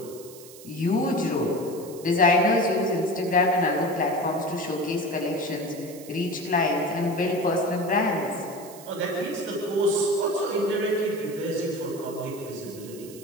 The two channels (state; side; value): noise; right; hiss, 18 dB below the sound